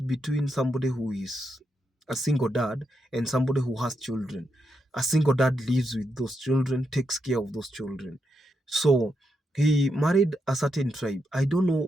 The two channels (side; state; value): both; normal; correlation 0.83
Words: somebody who is a single dad and somebody who has children. A single dad lives with those children, takes care of those children. So he married a certain tribe. I don't know